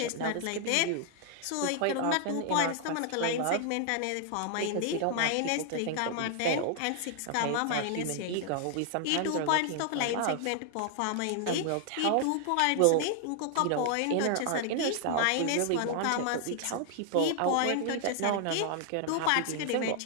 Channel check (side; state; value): both; different; correlation 0.00